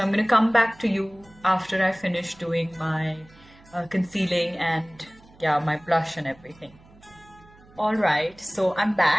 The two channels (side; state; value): right; noise; hum, 26 dB below the sound